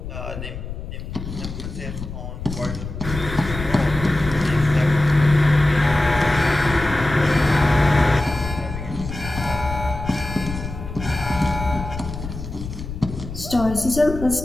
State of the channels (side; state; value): left; noise; rumble, 9 dB below the sound